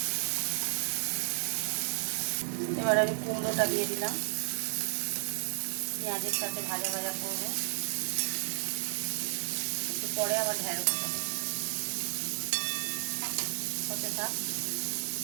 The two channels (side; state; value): left; silent; digital silence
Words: এবার আমি কুমড়োটা দিয়ে দিলাম, পেঁয়াজের সাথে ভাজা ভাজা করবো। একটু পরে আবার ঢ্যাঁড়সটা হতে থাক।